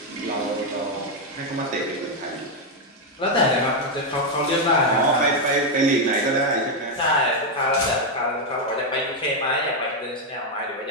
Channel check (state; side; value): normal; both; correlation 0.02